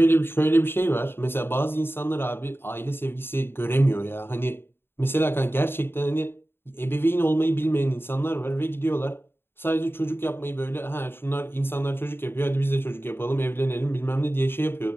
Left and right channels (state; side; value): late; right; 0.11 ms